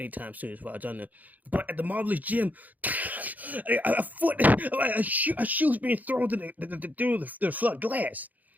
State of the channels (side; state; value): left; late; 0.080 ms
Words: soon, as far as I know. But at the Marvelous Gym, a shoe's being thrown through the flood glass.